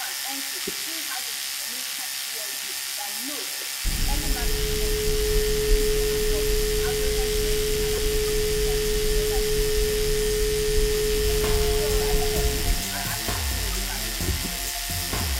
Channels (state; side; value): identical; both; correlation 1.00